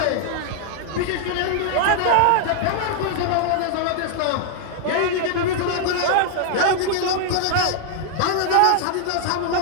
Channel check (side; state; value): both; different; correlation 0.00